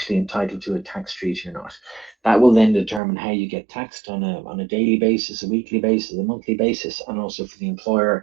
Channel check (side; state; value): left; drops out; at 3.0 s